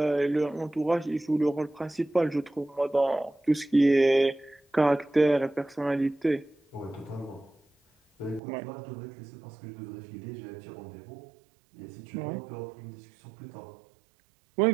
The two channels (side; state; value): left; drops out; at 8.4 s